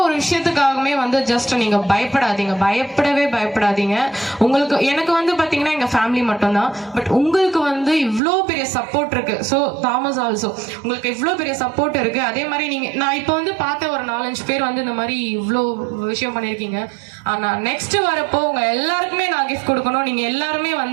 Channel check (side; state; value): left; drops out; at 8.2 s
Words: ஒரு விஷயத்துக்காகவுமே வந்து ஜஸ்ட் நீங்க பயப்படாதீங்க. உங்களுக்கு எனக்கு வந்து பாத்தீங்கன்னா எங்க ஃபேமிலி மட்டும்தான். பட் உங்களுக்கு வந்து இவ்வளோ பெரிய சப்போர்ட் இருக்கு. ஸோ தாமஸ் ஆல்சோ உங்களுக்கு இவ்வளோ பெரிய சப்போர்ட் இருக்கு. அதே மாதிரி நான் இப்போ வந்து பார்த்த ஒரு 4-5 பேர் வந்து இந்த மாதிரி இவ்வளோ விஷயம் பண்ணியிருக்கீங்க. ஆனா நெக்ஸ்ட் வரப்போ உங்க எல்லாருக்குமே நான் கிஃப்ட் கொடுக்கணும். நீங்க எல்லாருமே